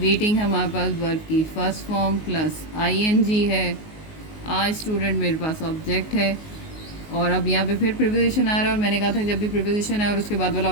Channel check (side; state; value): right; late; 19 ms